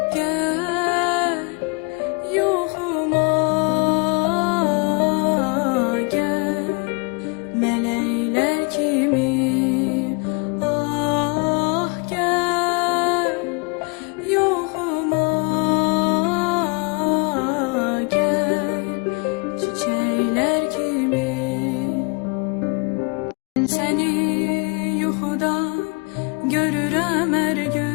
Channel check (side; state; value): right; quieter; 33.4 dB